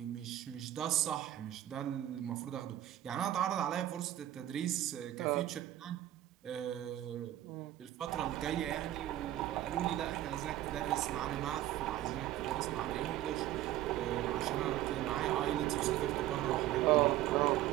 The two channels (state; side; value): quieter; left; 13.6 dB